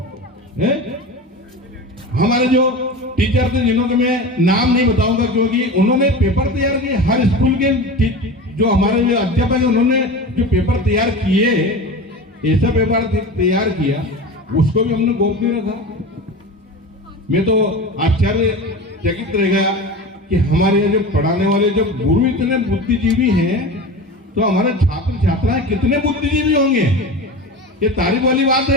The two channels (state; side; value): normal; both; correlation 0.30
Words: है? हमारे जो टीचर थे, जिन्हों के मैं नाम नहीं बताऊंगा क्योंकि उन्होंने पेपर तैयार किए, हर स्कूल के जो हमारे जो अध्यापक है उन्होंने जो पेपर तैयार किए, ऐसा पेपर तैयार किया, उसको भी हमने गोपनीय रखा। मैं तो आश्चर्यचकित रह गया कि हमारे यहाँ जो पढ़ाने वाले जो गुरु इतने बुद्धिजीवी हैं, तो हमारे छात्र छात्राएं कितने बुद्धिजीवी होंगे। ये तारीफ वाली बात